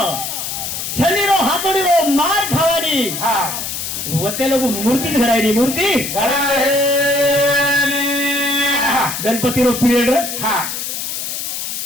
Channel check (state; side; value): noise; left; hiss, 5 dB below the sound